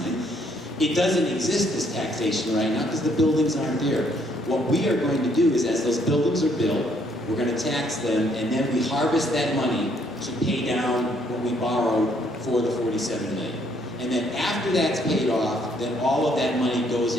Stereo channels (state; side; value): normal; both; correlation 0.68